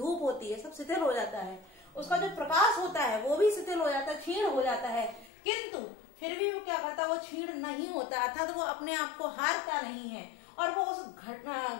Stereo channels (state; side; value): drops out; right; at 5.3 s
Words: होती है, सब शिथिल हो जाता है। उसका जो प्रकाश होता है वो भी शिथिल हो जाता है, क्षीण हो जाता है, किंतु फिर भी वो क्या करता है, वो क्षीण नहीं होता, अर्थात वो अपने आप को हारता नहीं है और वो उस